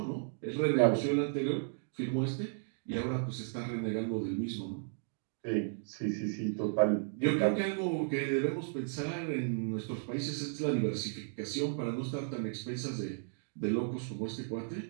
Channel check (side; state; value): left; silent; digital silence